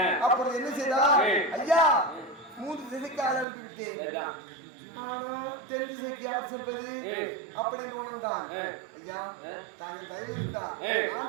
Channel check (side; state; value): left; drops out; at 3.5 s